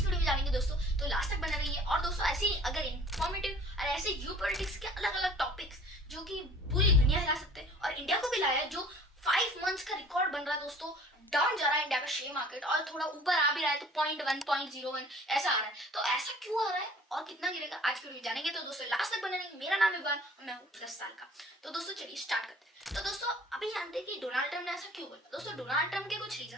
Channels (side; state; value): both; normal; correlation 0.49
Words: वीडियो में जानेंगे दोस्तों। तो लास्ट तक बने रहिए। और दोस्तों ऐसे ही अगर इंफॉर्मेटिव और ऐसे जियोपॉलिटिक्स के अलग अलग टॉपिक्स जो कि पूरी दुनिया हिला सकते हैं और इंडिया को भी लाया है, जो 5 मंथ्स का रिकॉर्ड बन रहा है दोस्तों, डाउन जा रहा है इंडिया का शेयर मार्केट और थोड़ा ऊपर आ भी रहा है, तो 0.1 0.01 ऐसा आ रहा है। तो ऐसा क्यों आ रहा है और कितना गिरेगा, आज की वीडियो जानेंगे। तो दोस्तों लास्ट तक बने रहिए। मेरा नाम है इवान और मैं हूँ 10 साल का। तो दोस्तों चलिए स्टार्ट करते हैं। तो दोस्तों अभी जानते हैं कि डोनाल्ड ट्रम्प ने ऐसा क्यों बोला। दोस्तों डोनाल्ड ट्रम्प के कुछ